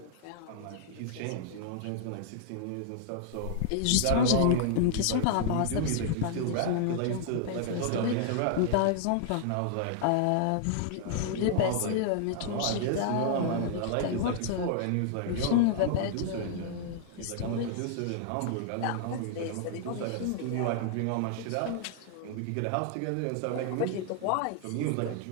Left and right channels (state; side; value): different; both; correlation -0.01